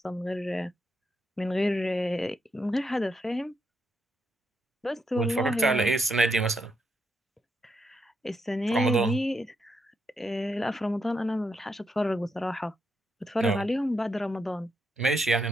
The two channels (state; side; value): normal; both; correlation 0.80